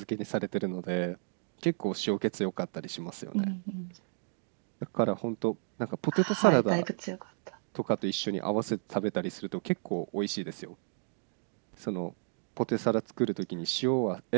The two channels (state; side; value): silent; left; digital silence